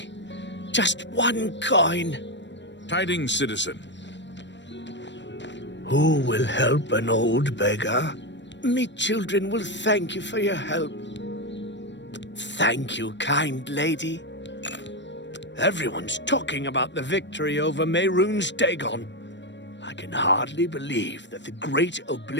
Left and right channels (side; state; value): right; late; 0.53 ms